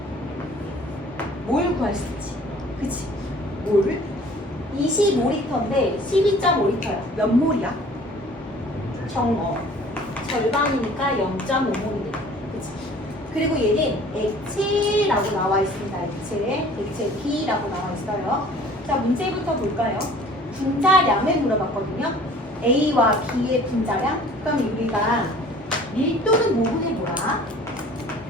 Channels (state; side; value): normal; both; correlation 0.50